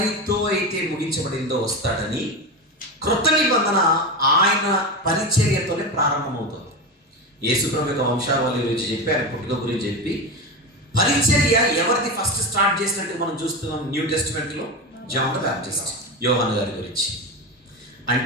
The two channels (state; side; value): normal; both; correlation 0.20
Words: అయితే ముగించబడిందో వస్తాడని, క్రొత్త నిబంధన ఆయన పరిచర్యతోనే ప్రారంభమవుతుంది. యేసుప్రభు యొక్క వంశావళి గురించి చెప్పి, ఆయన పుట్టుక గురించి చెప్పి, పరిచర్య ఎవరిది ఫస్ట్ స్టార్ట్ చేసినట్టు మనం చూస్తున్నాం న్యూ టెస్టిమెంట్లో. జాన్ ద బ్యాప్టిస్ట్, యోహాను గారి గురించి.